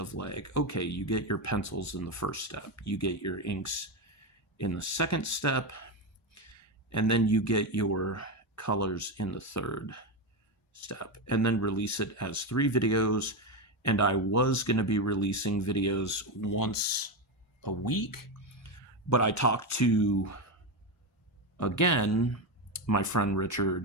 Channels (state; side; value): normal; both; correlation 0.12